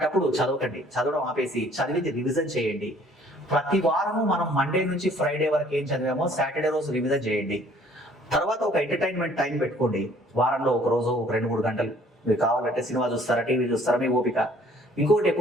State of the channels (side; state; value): both; normal; correlation 0.57